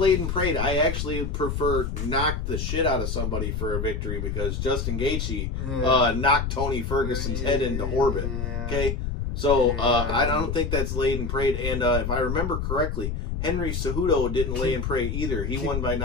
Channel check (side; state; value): left; noise; rumble, 2 dB below the sound